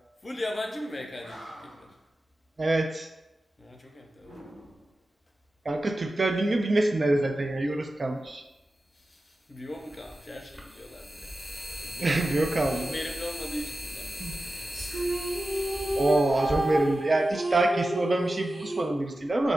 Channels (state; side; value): normal; both; correlation 0.94